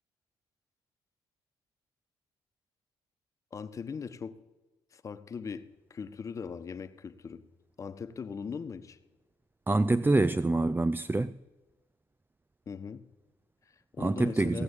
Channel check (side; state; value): both; normal; correlation 0.93